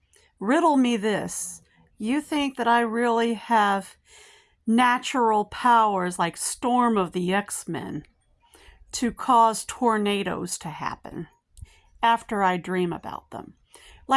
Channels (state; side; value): identical; both; correlation 1.00